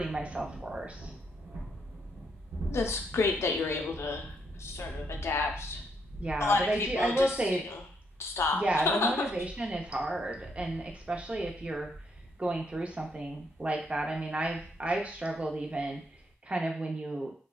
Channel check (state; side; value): normal; both; correlation 0.75